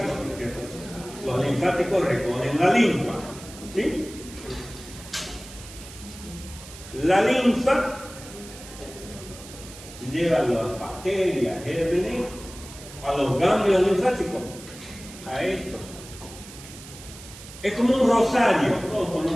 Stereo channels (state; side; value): noise; right; hiss, 16 dB below the sound